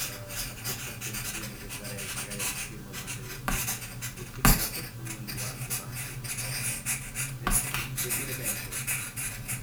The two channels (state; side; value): identical; both; correlation 1.00